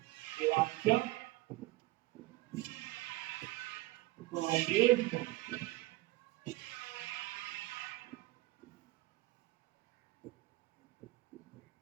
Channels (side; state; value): left; quieter; 19.3 dB